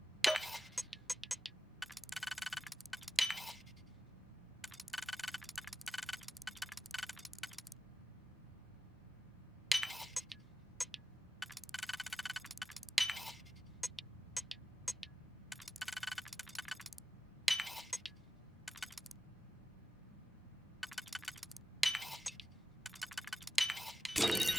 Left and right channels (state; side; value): normal; both; correlation 0.95